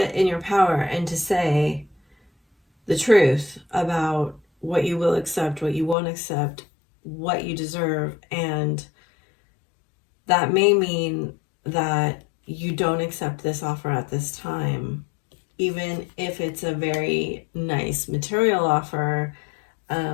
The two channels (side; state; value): right; drops out; at 6.0 s